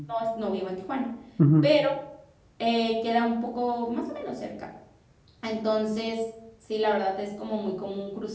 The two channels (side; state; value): both; identical; correlation 1.00